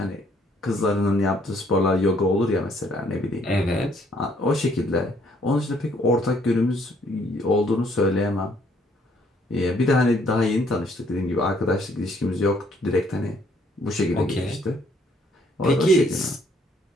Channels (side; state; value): both; normal; correlation 0.66